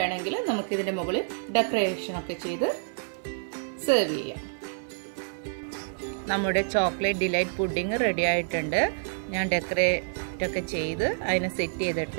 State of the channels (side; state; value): left; silent; 59 dB below the other